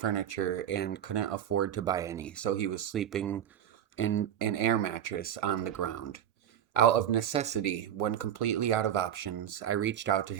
and couldn't afford to buy any, so he was sleeping in an air mattress on the ground. Out of necessity, when completely out of options, I reached out to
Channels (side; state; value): left; quieter; 10.1 dB